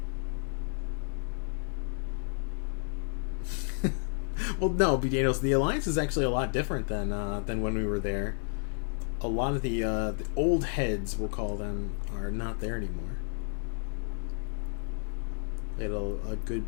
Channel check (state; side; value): silent; right; 57 dB below the other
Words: Well, no, B. Daniels, the Alliance is actually a lot different than when we were there. A lot of the old heads, we'll call them, are not there anymore. They had a good